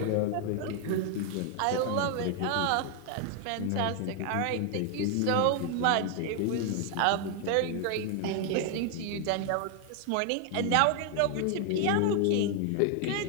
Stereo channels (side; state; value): both; different; correlation 0.00